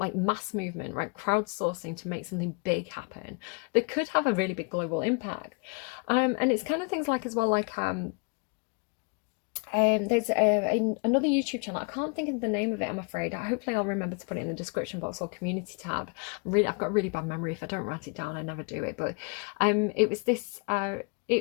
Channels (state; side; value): quieter; right; 34.7 dB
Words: mass movement, right? Crowdsourcing to make something big happen that could have a really big global impact. And it's kind of things like as well, like there's another YouTube channel. I can't think of the name of it, I'm afraid. Hopefully I'll remember to put it in the description box or community tab. I've got a really bad memory. If I don't write it down, I never do it. But it was this